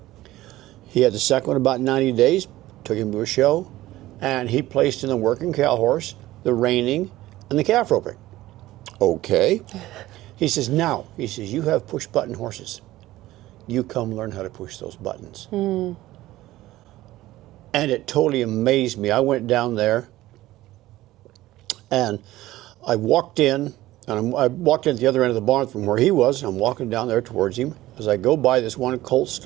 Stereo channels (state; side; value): quieter; left; 16.3 dB